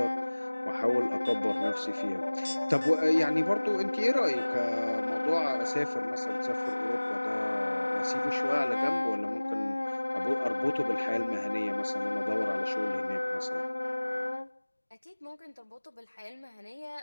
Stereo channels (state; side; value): inverted; both; correlation -1.00